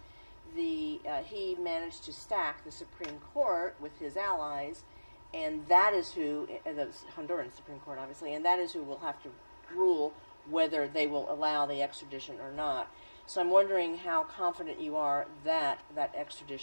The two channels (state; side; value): inverted; both; correlation -1.00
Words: he managed to stack the Supreme Court with his allies, and that is who the Honduran Supreme Court, obviously, and that is who will have to rule whether they will allow the extradition or not. So I'm wondering how confident you are that that